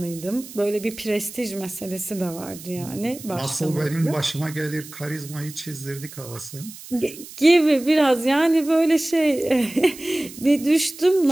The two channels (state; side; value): noise; right; hiss, 16 dB below the sound